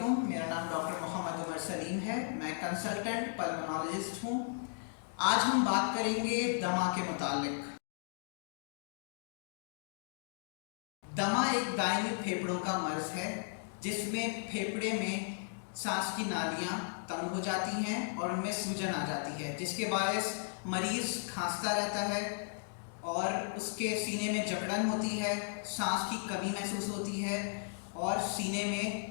मेरा नाम डॉक्टर मोहम्मद उमर सलीम है। मैं कंसल्टेंट पल्मोनोलॉजिस्ट हूँ। आज हम बात करेंगे दमा के मुतालिक। दमा एक दायमी फेफड़ों का मर्ज़ है जिसमें फेफड़े में सांस की नालियाँ तंग हो जाती हैं और उनमें सूजन आ जाती है, जिसके बायस मरीज़ खांसता रहता है और उसके सीने में जकड़न होती है, सांस की कमी महसूस होती है और सीने में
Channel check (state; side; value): silent; right; digital silence